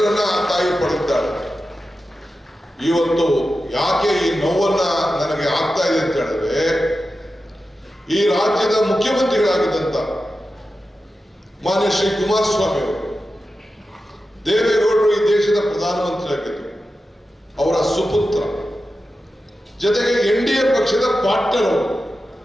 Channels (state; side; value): normal; both; correlation 0.92